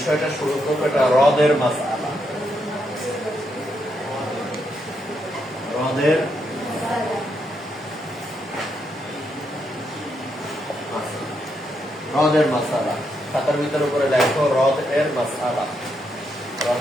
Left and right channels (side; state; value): both; normal; correlation 0.80